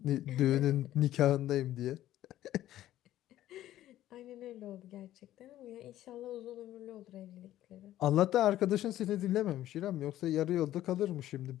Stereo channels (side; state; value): right; quieter; 13.5 dB